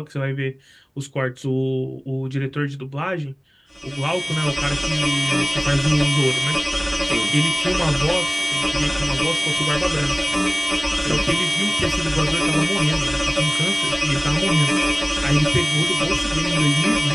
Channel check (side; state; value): both; identical; correlation 1.00